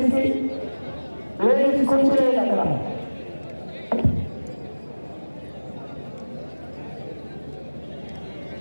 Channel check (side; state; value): both; inverted; correlation -1.00